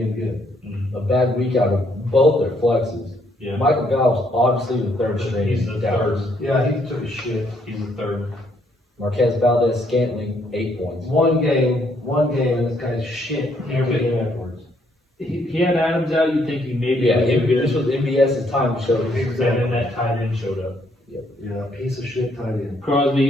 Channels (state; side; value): normal; both; correlation 0.70